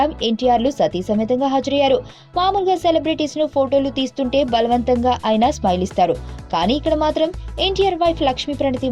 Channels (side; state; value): both; identical; correlation 1.00